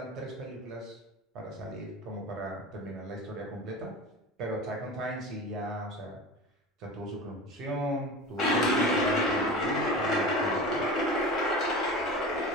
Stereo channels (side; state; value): both; normal; correlation 0.32